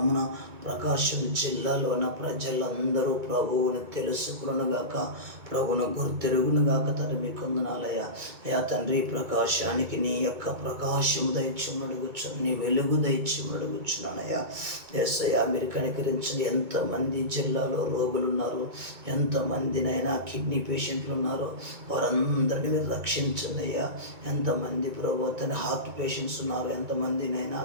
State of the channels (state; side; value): late; left; 2.2 ms